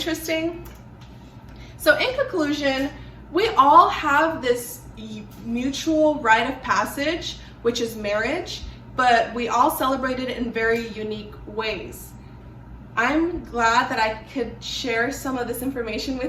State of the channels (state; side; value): identical; both; correlation 1.00